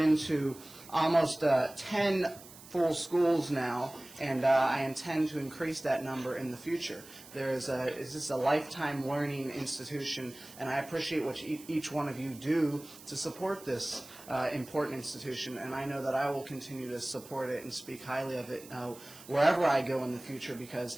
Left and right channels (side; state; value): right; noise; hiss, 19 dB below the sound